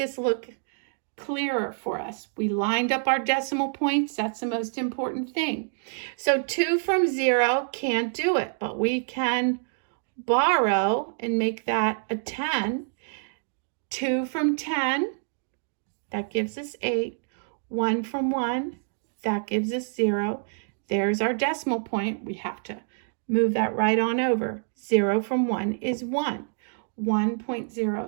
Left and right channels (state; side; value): silent; left; digital silence